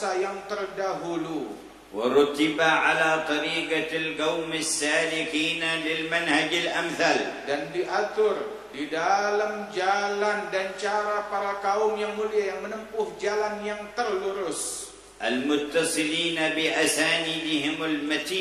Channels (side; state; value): both; identical; correlation 1.00